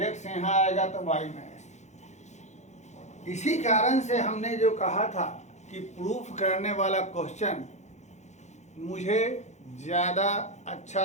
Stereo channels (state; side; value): late; right; 0.33 ms